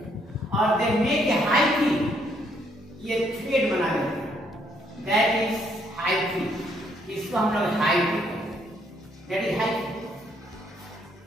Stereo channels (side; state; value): both; normal; correlation 0.70